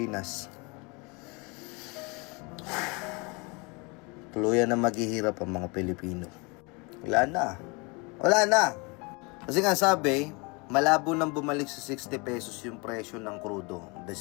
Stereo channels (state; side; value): quieter; right; 29.1 dB